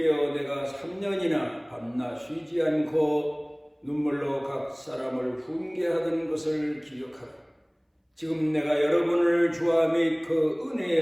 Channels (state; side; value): identical; both; correlation 1.00